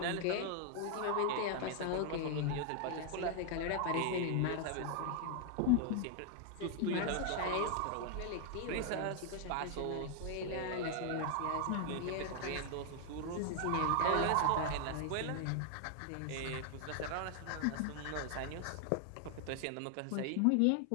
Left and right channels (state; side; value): different; both; correlation 0.00